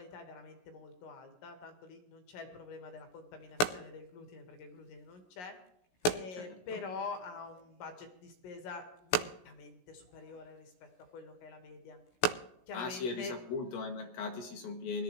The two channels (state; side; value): late; right; 17 ms